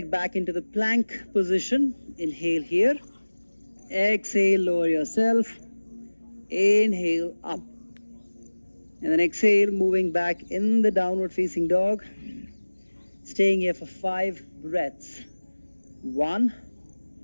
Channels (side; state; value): both; inverted; correlation -1.00